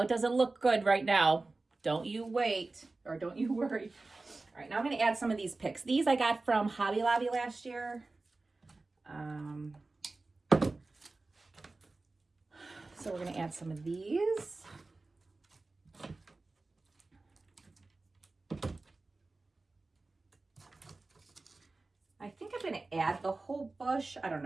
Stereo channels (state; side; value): quieter; left; 3.4 dB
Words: it doesn't look good right now. Don't you wait, or don't you worry. All right, now I'm gonna add some of these picks. These I got from Hobby Lobby last year. So we're going to add some of these. I think I'm going to add the whole bush. I don't